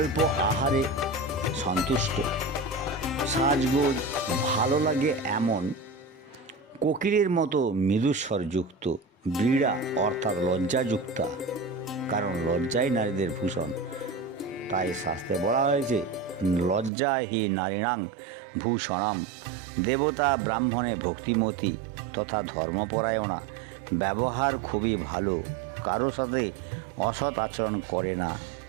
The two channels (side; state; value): left; drops out; at 16.9 s